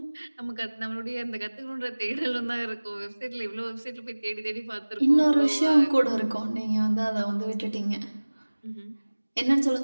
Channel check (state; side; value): inverted; both; correlation -1.00